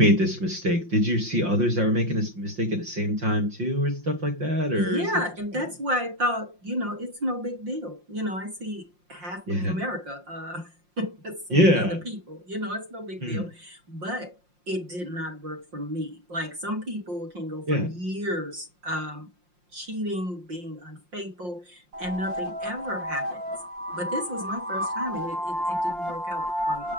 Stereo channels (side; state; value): left; late; 5.7 ms